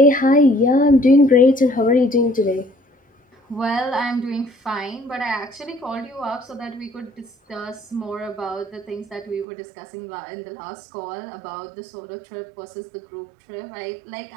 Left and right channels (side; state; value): left; drops out; at 9.5 s